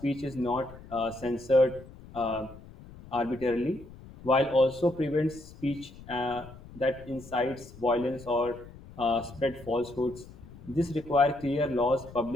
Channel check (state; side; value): noise; left; rumble, 18 dB below the sound